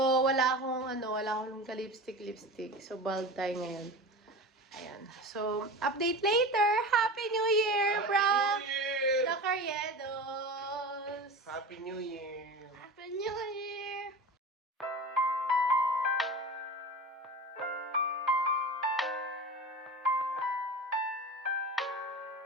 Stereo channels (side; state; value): both; normal; correlation 0.31